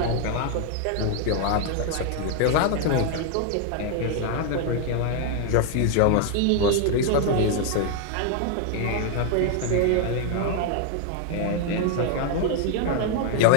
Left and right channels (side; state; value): both; different; correlation 0.00